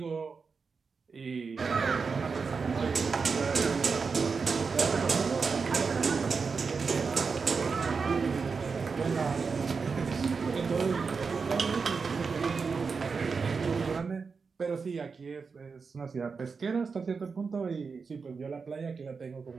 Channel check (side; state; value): left; quieter; 5.1 dB